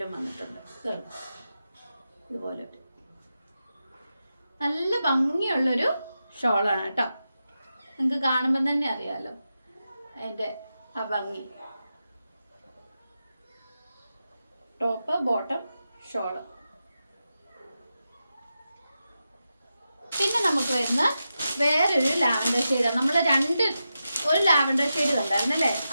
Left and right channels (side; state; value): both; inverted; correlation -0.90